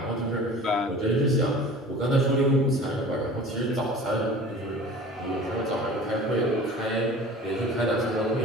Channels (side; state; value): both; normal; correlation 0.42